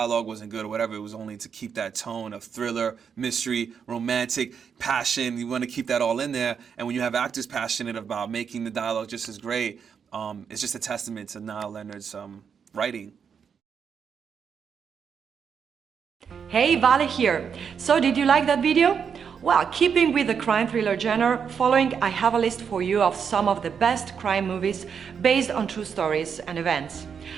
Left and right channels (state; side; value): quieter; left; 6.9 dB